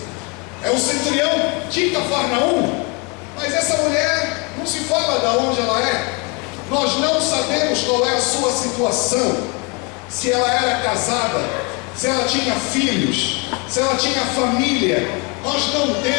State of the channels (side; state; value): right; quieter; 31.4 dB